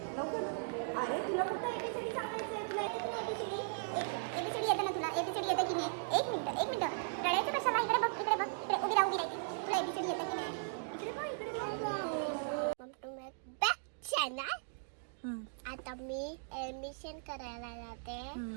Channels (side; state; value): left; silent; digital silence